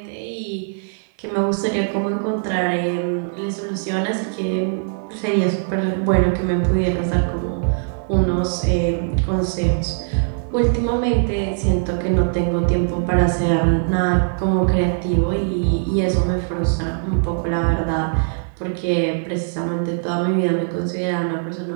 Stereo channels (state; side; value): silent; left; digital silence